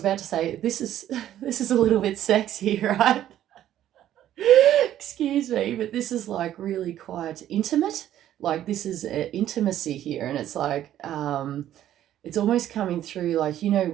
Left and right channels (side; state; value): left; quieter; 11.9 dB